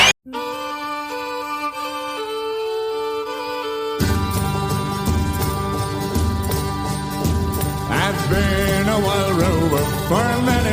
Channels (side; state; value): both; identical; correlation 1.00